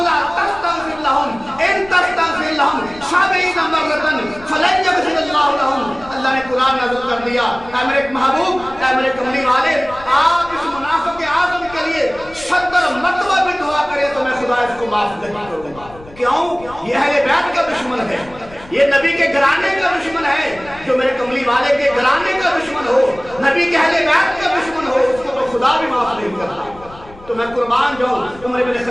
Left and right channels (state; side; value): noise; left; rumble, 20 dB below the sound